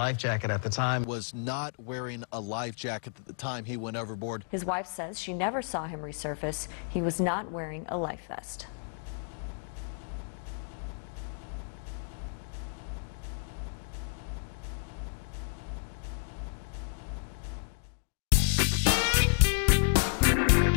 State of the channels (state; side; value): silent; right; digital silence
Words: jacket at the time. Was not wearing a life jacket at the time he went overboard. His wife says she never saw him resurface. He was not wearing a life vest.